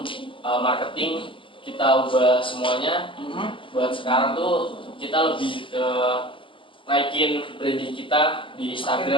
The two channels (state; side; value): late; right; 0.25 ms